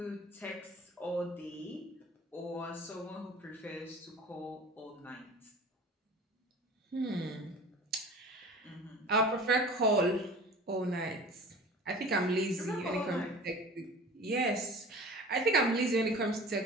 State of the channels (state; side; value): normal; both; correlation 0.41